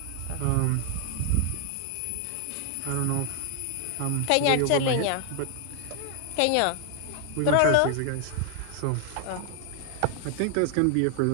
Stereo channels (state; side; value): different; both; correlation 0.00